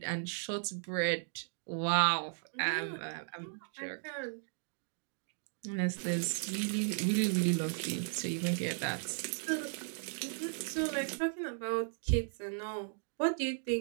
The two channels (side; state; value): left; silent; digital silence